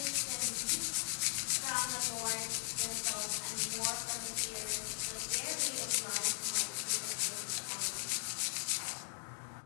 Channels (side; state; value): right; silent; digital silence